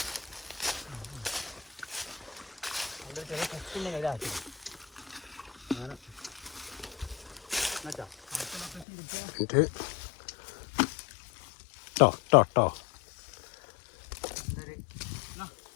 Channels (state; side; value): drops out; right; at 8.8 s